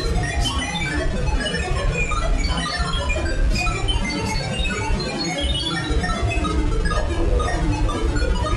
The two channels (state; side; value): identical; both; correlation 1.00